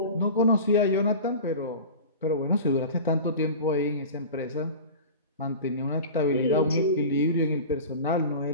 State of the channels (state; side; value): inverted; both; correlation -0.34